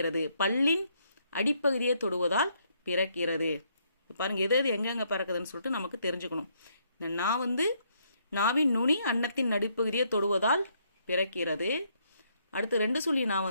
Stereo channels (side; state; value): both; inverted; correlation -0.71